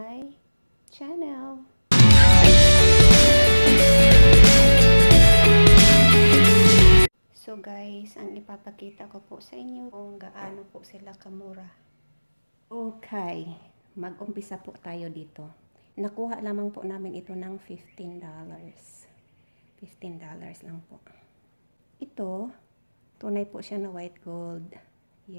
channel. So guys, ang ipapakita ko po sa inyo kung gaano po sila kamura. Okay, mag-umpisa po tayo dito. Nakuha lamang po namin ito ng $15. $15 lang po. Ito, tunay po siya na white gold.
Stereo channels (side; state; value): both; inverted; correlation -1.00